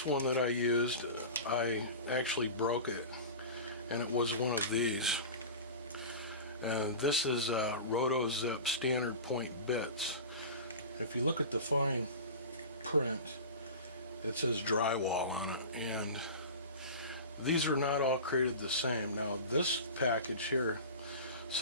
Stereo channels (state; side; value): inverted; both; correlation -0.32